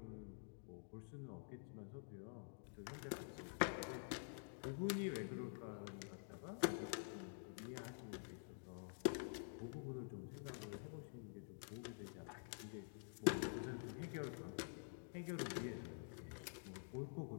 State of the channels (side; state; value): right; silent; digital silence